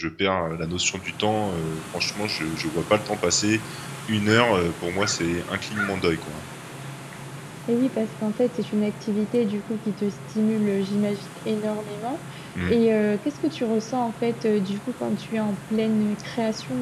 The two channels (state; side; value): identical; both; correlation 1.00